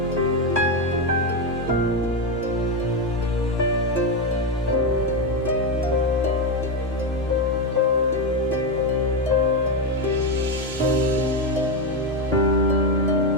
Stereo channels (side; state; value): both; normal; correlation 0.09